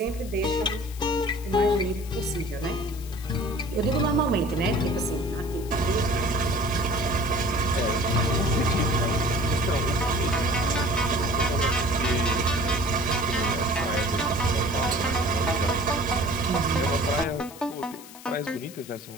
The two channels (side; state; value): left; noise; hiss, 17 dB below the sound